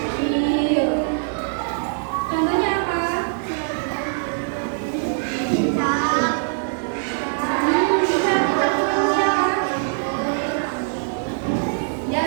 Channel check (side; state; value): left; silent; 64 dB below the other